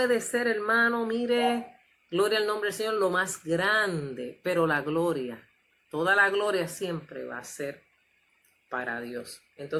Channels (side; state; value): both; identical; correlation 1.00